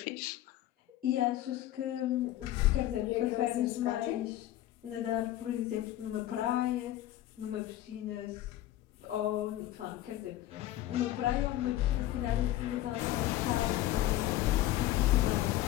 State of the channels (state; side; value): quieter; right; 14.2 dB